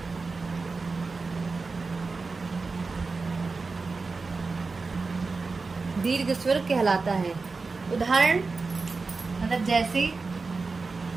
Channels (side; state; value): left; quieter; 4.1 dB